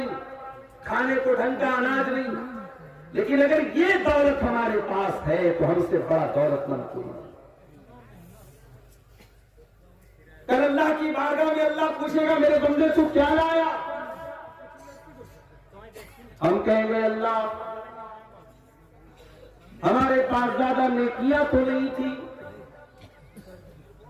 खाने को ढंग का अनाज नहीं, लेकिन अगर ये दौलत हमारे पास है तो हमसे बड़ा दौलतमंद कोई नहीं। कल अल्लाह की बारगाह में अल्लाह पूछेगा मेरे बंदे तू क्या लाया? हम कहेंगे अल्लाह हमारे पास ज्यादा नेकियां तो नहीं थी,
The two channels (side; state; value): both; identical; correlation 1.00